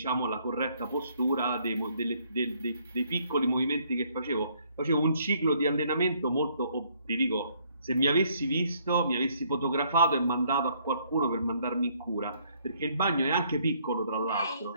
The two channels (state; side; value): inverted; both; correlation -0.67